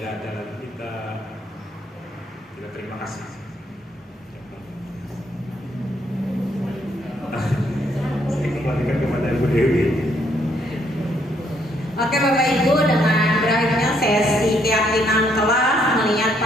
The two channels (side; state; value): both; normal; correlation 0.71